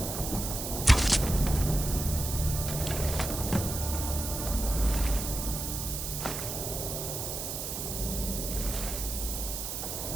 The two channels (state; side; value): noise; right; hiss, 4 dB below the sound